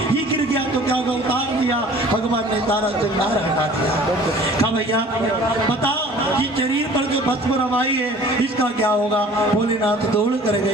ये गिर गया तो क्या होगा? उतार दिया। भगवान ने सारा श्रृंगार हटा दिया। कहा भैया बता ये शरीर पर जो भस्म रवाई है इसका क्या होगा? भोलेनाथ दौड़ कर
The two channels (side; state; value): both; normal; correlation 0.49